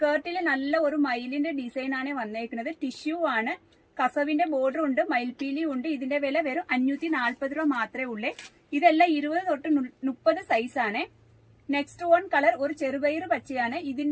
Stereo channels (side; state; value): both; identical; correlation 1.00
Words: നല്ല ഒരു മയിലിന്റെ ഡിസൈൻ ആണ് വന്നേക്കുന്നത്. ടിഷ്യൂ ആണ്, കസവിന്റെ ബോർഡർ ഉണ്ട്, മയിൽപീലി ഉണ്ട്. ഇതിന്റെ വില വെറും 540 രൂപ മാത്രമേ ഉള്ളേ. ഇതെല്ലാം 20 തൊട്ട് 30 സൈസ് ആണ്. നെക്സ്റ്റ് വൺ കളർ ഒരു ചെറുപയർ പച്ചയാണ്.